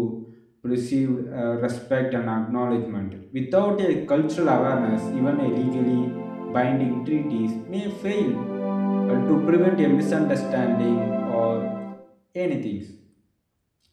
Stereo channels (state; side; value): identical; both; correlation 1.00